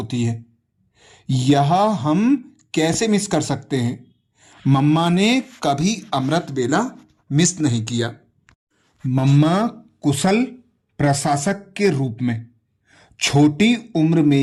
है। यह हम कैसे मिस कर सकते हैं? मम्मा ने कभी अमृत बेला मिस नहीं किया। मम्मा कुशल प्रशासक के रूप में छोटी उम्र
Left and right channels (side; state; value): both; identical; correlation 1.00